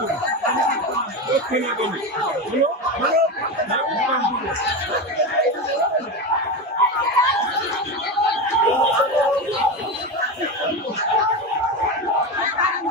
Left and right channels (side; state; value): both; normal; correlation 0.19